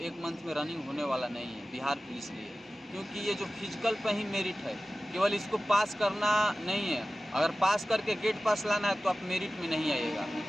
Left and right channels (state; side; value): normal; both; correlation 0.96